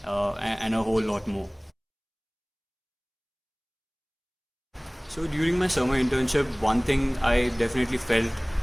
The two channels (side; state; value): both; identical; correlation 1.00